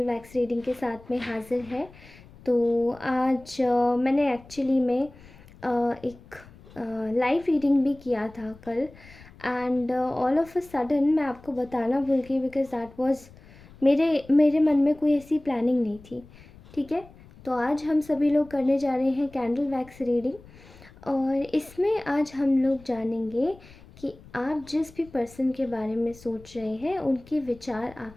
वैक्स रीडिंग के साथ में हाजिर है। तो आज मैंने एक्चुअली में एक लाइव रीडिंग भी किया था कल, and all of a sudden मैं आपको बताना भूल गई बिकॉज दैट वाज मेरे मेरे मन में कोई ऐसी प्लानिंग नहीं थी। ठीक है, तो आज हम सभी लोग करने जा रहे हैं कैंडल वैक्स रीडिंग, और इसमें आज हम लोग जानेंगे कि आप जिस भी पर्सन के बारे में सोच रहे हैं उनके विचार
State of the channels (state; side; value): noise; left; rumble, 22 dB below the sound